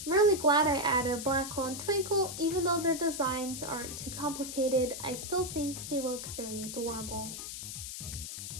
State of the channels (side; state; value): left; noise; hiss, 8 dB below the sound